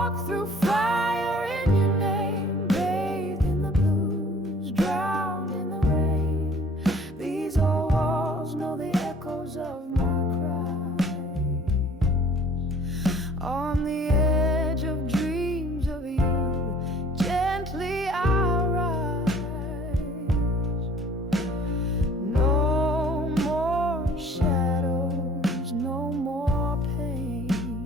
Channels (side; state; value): both; normal; correlation 0.53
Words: through fire in your name, bathed in the blues, drowned in the rain. These old walls know the echoes of my cries. On the edge of dreams of you, gently I rise. No